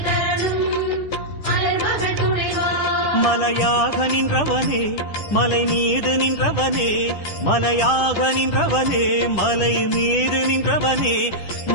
தரணும் அலர்மகள் துணைவா. மலையாக நின்றவனே மலை மீது நின்றவனே மலையாக நின்றவனே மலை மீது நின்றவனே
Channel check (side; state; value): right; late; 10 ms